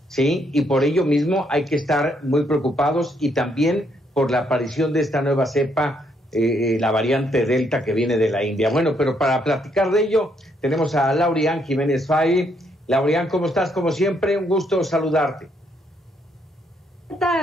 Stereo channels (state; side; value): normal; both; correlation 0.73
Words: ¿sí? Y por ello mismo hay que estar muy preocupados, y también por la aparición de esta nueva cepa, la variante Delta que viene de la India. Bueno, pero para platicar de ello tenemos a Laurian Jiménez Fay. Laurian, ¿cómo estás? Como siempre, un gusto saludarte. ¿Qué